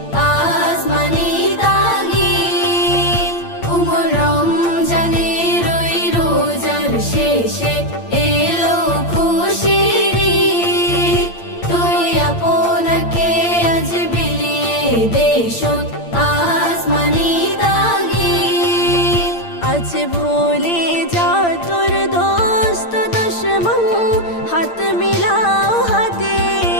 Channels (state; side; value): late; right; 8.7 ms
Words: আসমানি তাগিদ উমর রমজানের ওই রোজার শেষে এলো খুশির ঈদ তুই আপনাকে আজ বিলিয়ে দেশত আসমানি তাগিদ আজ ভুলে যা তোর দোস্ত দুশ্মন হাত মিলাও হাতে